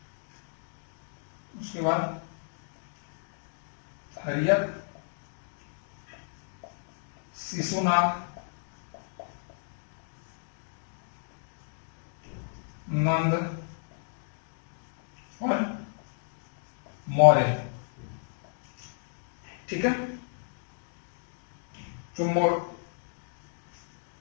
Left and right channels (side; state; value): right; silent; digital silence